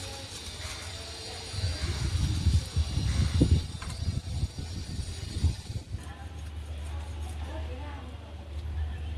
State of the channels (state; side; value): identical; both; correlation 1.00